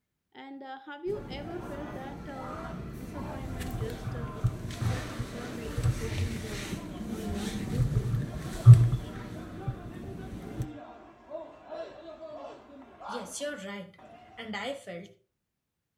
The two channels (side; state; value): both; identical; correlation 1.00